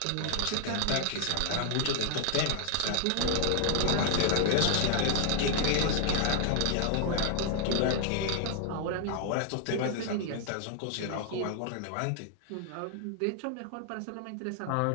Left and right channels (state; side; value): different; both; correlation -0.01